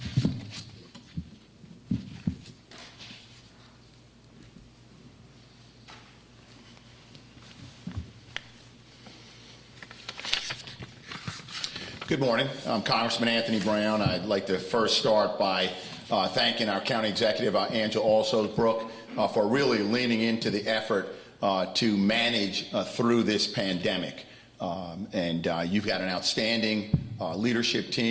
Good morning. I'm Congressman Anthony Brown. I'd like to first start by thanking our County Executive, Angela Alsobrooks, for really leaning into the effort to manage through this pandemic. You've got an outstanding leadership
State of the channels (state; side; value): identical; both; correlation 1.00